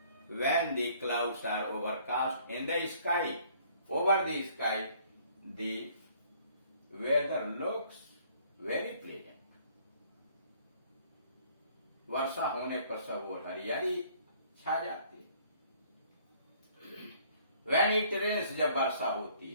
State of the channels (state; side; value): inverted; both; correlation -0.59